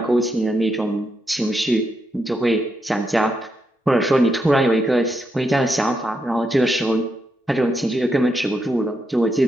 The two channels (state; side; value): normal; both; correlation 0.82